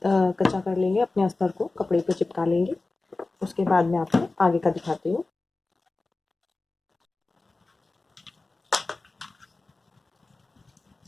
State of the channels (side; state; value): right; quieter; 3.4 dB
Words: कर लेंगे, अपने अस्तर को कपड़े पर चिपका लेंगे। उसके बाद मैं आपको आगे का दिखाती हूँ।